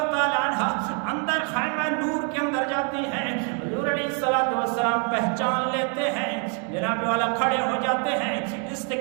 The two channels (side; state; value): left; quieter; 39.6 dB